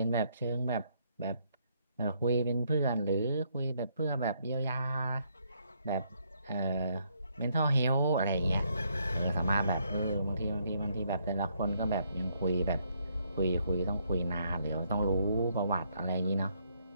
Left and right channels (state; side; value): inverted; both; correlation -0.72